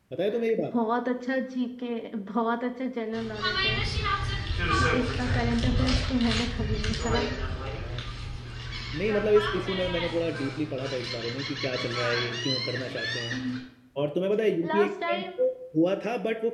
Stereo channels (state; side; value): identical; both; correlation 1.00